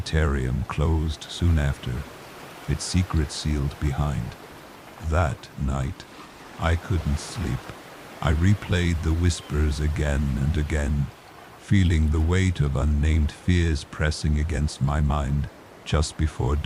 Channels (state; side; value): identical; both; correlation 1.00